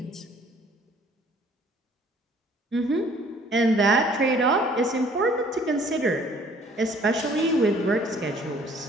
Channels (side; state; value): both; normal; correlation 0.57